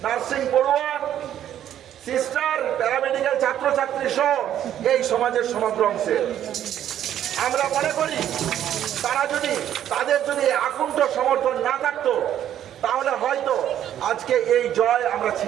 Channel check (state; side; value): quieter; left; 10.9 dB